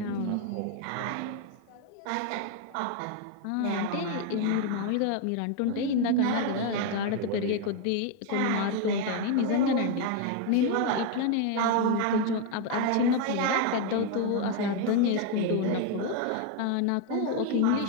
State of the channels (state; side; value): different; both; correlation 0.01